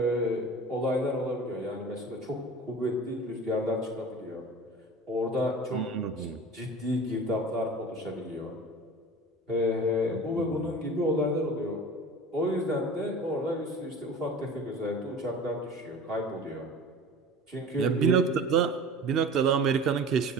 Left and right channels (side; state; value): both; normal; correlation 0.38